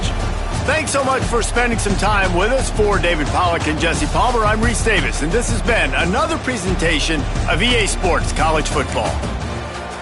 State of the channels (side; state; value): both; identical; correlation 1.00